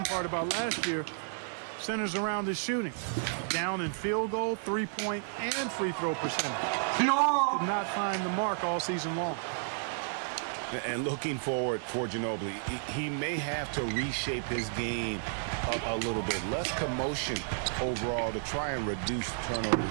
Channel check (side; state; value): left; silent; digital silence